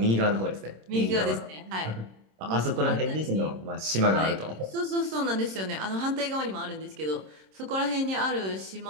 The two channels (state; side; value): late; left; 26 ms